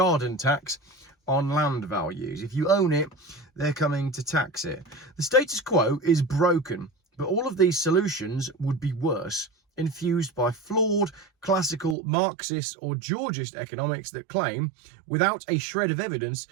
tax on land values. If you own it, they're coming to tax it. The status quo is broken, but all of these solutions would be worse, infused by flawed, classical, Marxist or Georgist economics that claim, without a shred of evidence,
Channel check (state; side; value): drops out; left; at 12.0 s